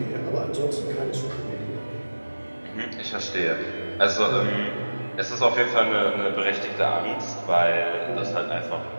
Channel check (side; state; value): both; inverted; correlation -1.00